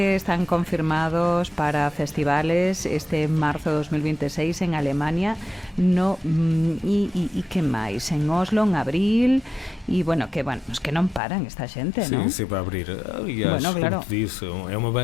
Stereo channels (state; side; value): drops out; right; at 11.2 s